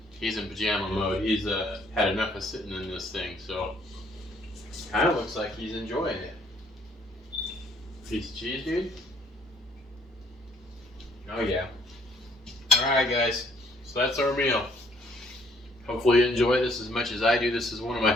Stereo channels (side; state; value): both; normal; correlation 0.64